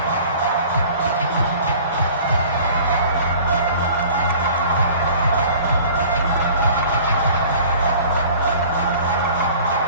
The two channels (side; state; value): both; inverted; correlation -0.47